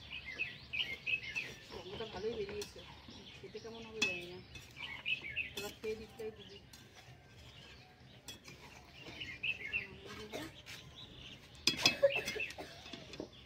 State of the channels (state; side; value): identical; both; correlation 1.00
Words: গন্ধটা ভালোই বেরিয়েছে, খেতে কেমন হবে জানি না, এবার খেয়ে দিকটাই দিবি।